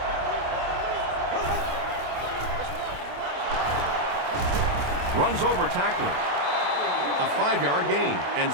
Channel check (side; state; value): left; late; 27 ms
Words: Runs over tacklers. A 5-yard gain, and